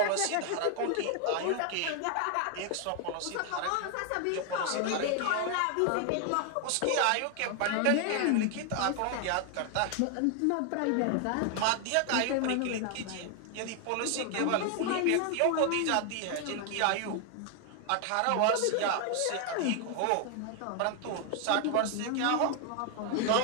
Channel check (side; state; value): both; different; correlation 0.00